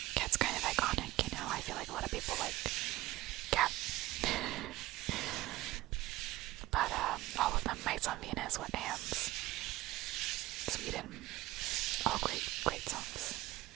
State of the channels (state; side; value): quieter; left; 17.5 dB